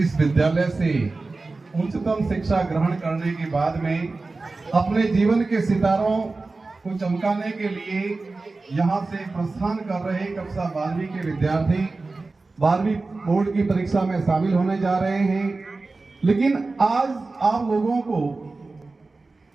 विद्यालय से उच्चतम शिक्षा ग्रहण करने के बाद में अपने जीवन के सितारों को चमकाने के लिए यहाँ से प्रस्थान कर रहे कक्षा 12वीं के विद्यार्थी 12वीं बोर्ड की परीक्षा में शामिल होने जा रहे हैं। लेकिन आज आप लोगों को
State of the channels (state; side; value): quieter; left; 3.6 dB